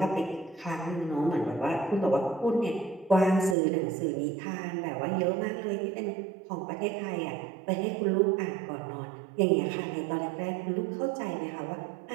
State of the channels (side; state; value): left; drops out; at 3.6 s